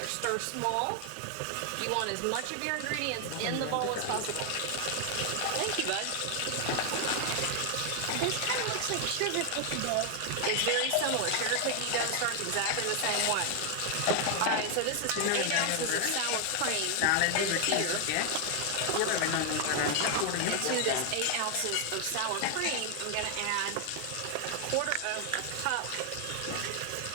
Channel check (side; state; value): both; different; correlation 0.00